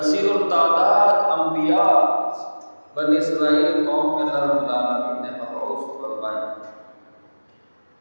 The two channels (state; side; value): inverted; both; correlation -1.00